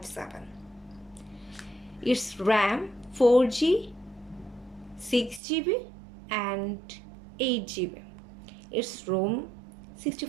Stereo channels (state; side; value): drops out; left; at 5.4 s